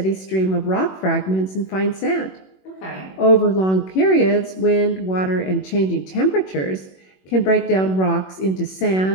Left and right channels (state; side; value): late; right; 21 ms